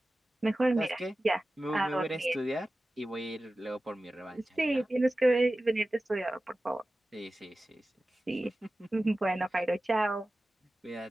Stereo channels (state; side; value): normal; both; correlation 0.95